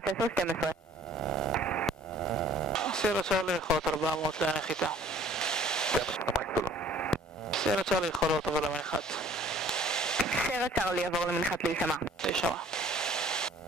10-12. סיירה צ'ארלי יכולות 400 לנחיתה. זה מה שאתה מייק סיירה צ'ארלי יכולות עבור למנחת. סיירה צ'ארלי יעבור למנחת להישמע. להישמע.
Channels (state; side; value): normal; both; correlation 0.54